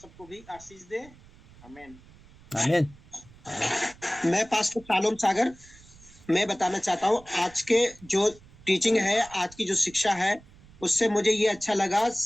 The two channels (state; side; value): noise; right; rumble, 24 dB below the sound